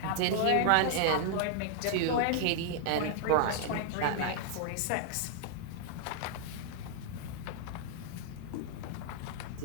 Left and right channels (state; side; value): different; both; correlation 0.00